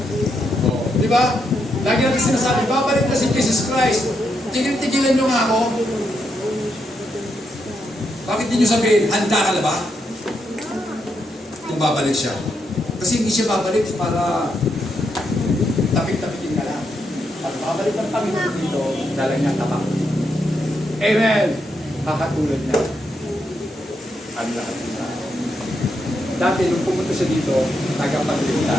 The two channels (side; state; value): both; normal; correlation 0.81